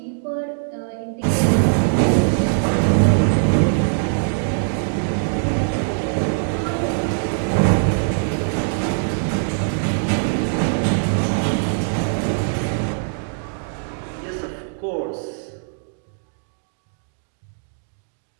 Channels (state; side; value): silent; left; digital silence